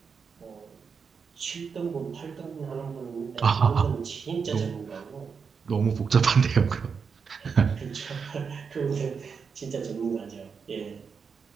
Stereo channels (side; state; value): left; quieter; 5.9 dB